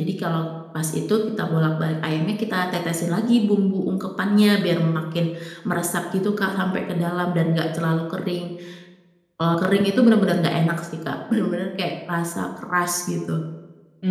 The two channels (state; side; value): identical; both; correlation 1.00